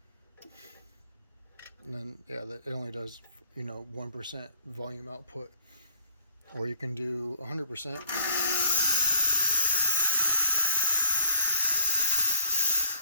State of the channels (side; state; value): both; inverted; correlation -0.59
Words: and then yeah, it only does, you know, 1% volume output. Or you can do 100%.